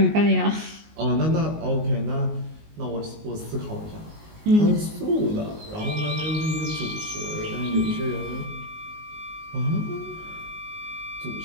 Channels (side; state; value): left; late; 19 ms